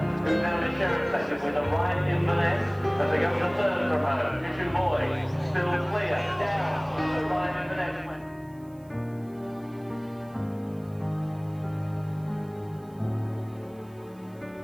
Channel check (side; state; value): right; noise; hiss, 30 dB below the sound